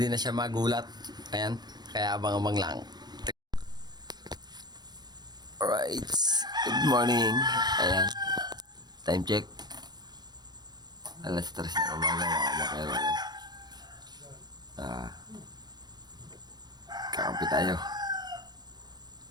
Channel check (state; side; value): late; left; 0.20 ms